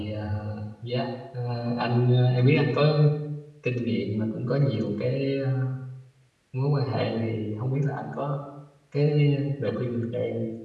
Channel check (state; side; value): identical; both; correlation 1.00